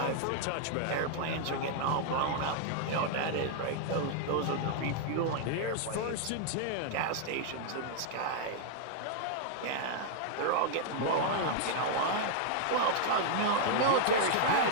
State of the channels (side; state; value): both; different; correlation 0.00